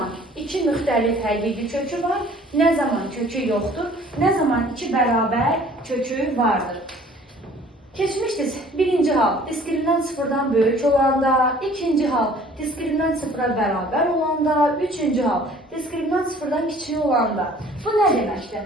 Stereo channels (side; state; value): both; normal; correlation 0.53